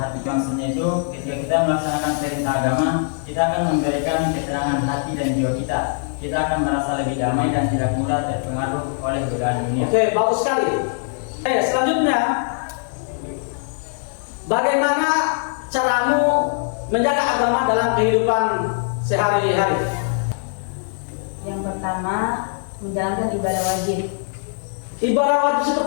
Maksudnya itu ketika kita melaksanakan perintah agama, kita akan memberikan ketenangan hati dan jiwa kita. Kita akan merasa lebih damai dan tidak mudah terpengaruh oleh godaan dunia. Oke, bagus sekali. Selanjutnya, bagaimana caramu menjaga agama dalam kehidupan sehari-hari? Yang pertama, menjalankan ibadah wajib. Ibadah wajib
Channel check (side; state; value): right; silent; digital silence